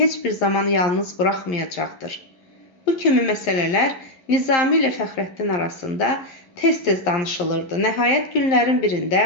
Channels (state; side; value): late; right; 11 ms